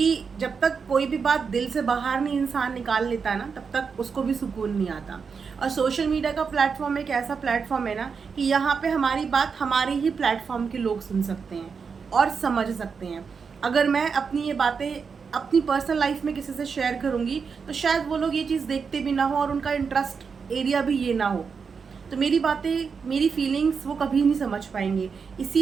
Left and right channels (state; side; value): quieter; left; 5.7 dB